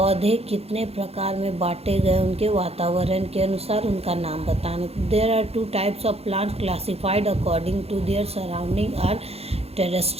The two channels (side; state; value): left; late; 0.29 ms